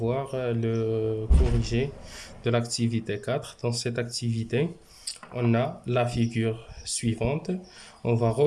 le corrigé de l'activité 4. Dans cette activité, on a la figure suivante. On va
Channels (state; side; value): identical; both; correlation 1.00